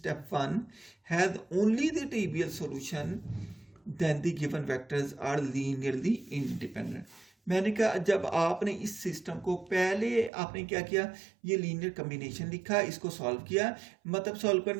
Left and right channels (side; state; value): left; drops out; at 10.3 s